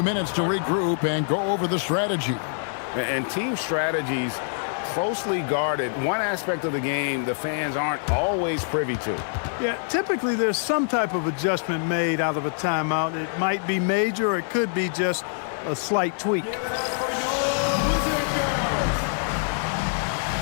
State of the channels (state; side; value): silent; right; 62 dB below the other